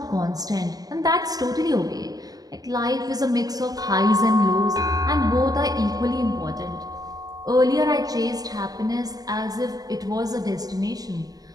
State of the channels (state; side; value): late; left; 0.18 ms